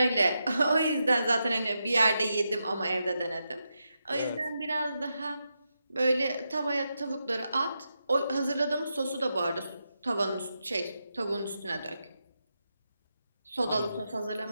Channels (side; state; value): both; inverted; correlation -0.86